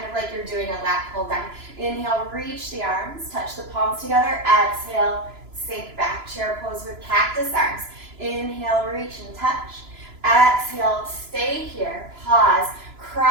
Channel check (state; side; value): late; left; 3.0 ms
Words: of like you're doing a lat pull down. Inhale, reach the arms, touch the palms together. Exhale, sink back. Chair pose with cactus arms. Inhale, reach and touch. Exhale, stay here. Pause.